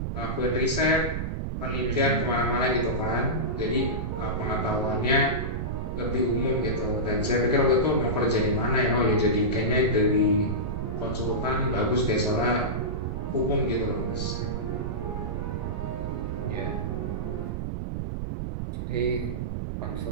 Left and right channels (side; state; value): right; noise; rumble, 3 dB below the sound